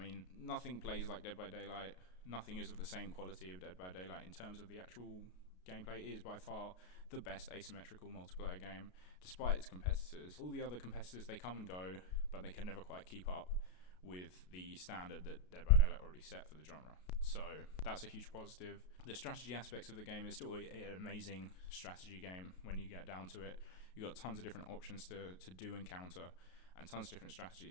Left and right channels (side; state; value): right; late; 33 ms